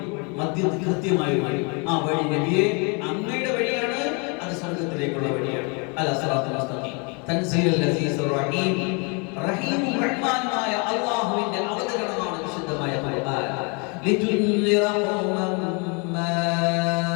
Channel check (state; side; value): quieter; right; 33.3 dB